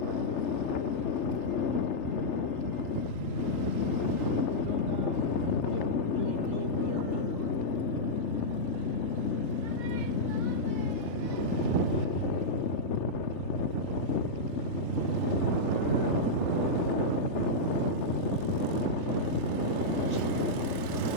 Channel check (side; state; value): right; late; 3.3 ms